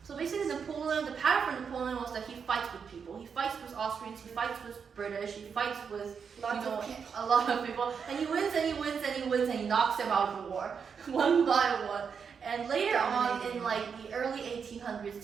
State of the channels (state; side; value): quieter; left; 6.4 dB